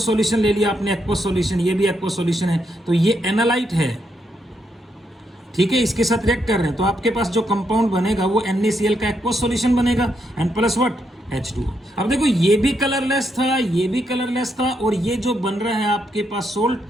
सॉल्यूशन ले लिया आपने एक्वस सॉल्यूशन, ये भी एक्वस सॉल्यूशन है, तो ये एनालाइट है, ठीक है। इसके साथ रिएक्ट कर रहे हैं तो आपके पास जो कंपाउंड बनेगा वो NaCl का एक्वस सॉल्यूशन बनेगा एंड प्लस व्हाट H2O। अब देखो ये भी कलरलेस था, ये भी कलरलेस था, और ये जो बन रहा है आपके पास सोल्ट,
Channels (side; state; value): both; normal; correlation 0.79